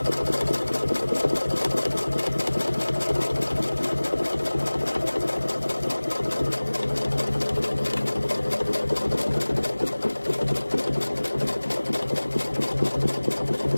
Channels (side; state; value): both; inverted; correlation -1.00